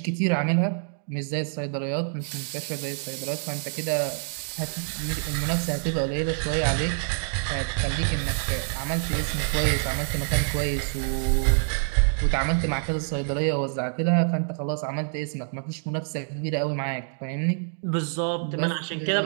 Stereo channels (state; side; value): silent; left; digital silence